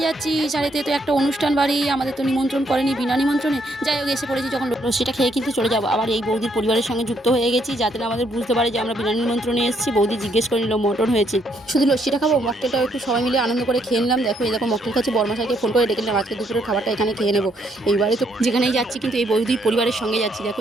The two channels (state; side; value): normal; both; correlation 0.72